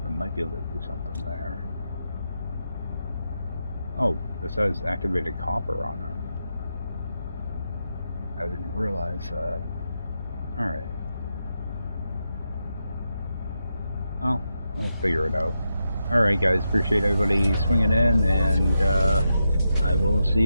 I might be able to do something there. Oh, this has activated copper on it. I didn't realize that. Alright. Oh, I'll figure it out. Alright guys, appreciate everybody swinging in, and I will see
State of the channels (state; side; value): inverted; both; correlation -0.86